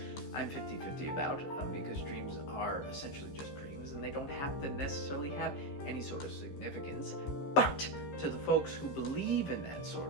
I'm 50-50 about, because dreams are essentially just dreams and they don't have to necessarily have any sort of significance. But to the folks who believe in that sort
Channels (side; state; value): right; late; 14 ms